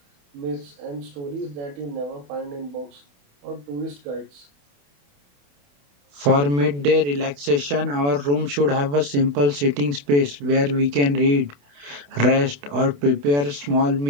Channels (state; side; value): late; left; 28 ms